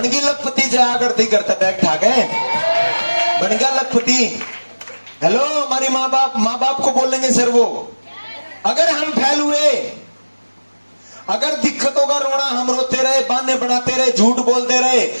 लखपति जया करती करता बैग ठाक है, बन गया लखपति। हेलो, हमारी माँ बाप को बोलेंगे सर वो। अगर हम फैल हुए, अगर दिक्कतों का रोना हम रोते रहे, बहाने बनाते रहे, झूठ बोलते रहे,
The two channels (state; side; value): inverted; both; correlation -1.00